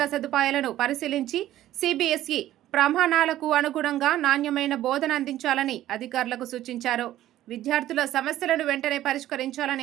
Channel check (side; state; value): left; quieter; 13.6 dB